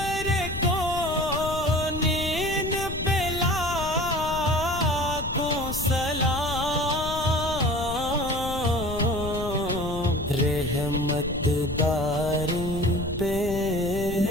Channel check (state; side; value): noise; left; rumble, 8 dB below the sound